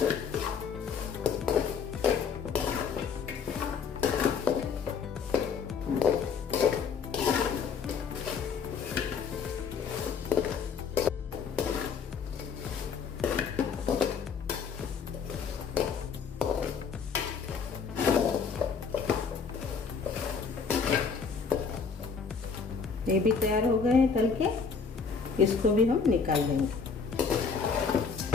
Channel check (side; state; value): right; quieter; 5.8 dB